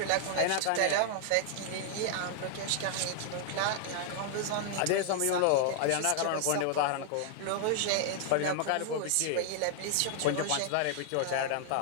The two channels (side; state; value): both; different; correlation 0.00